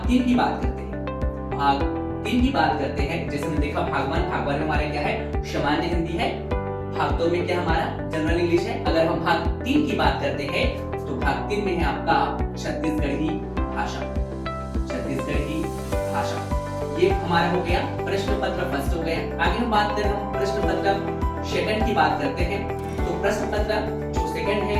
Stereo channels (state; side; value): identical; both; correlation 1.00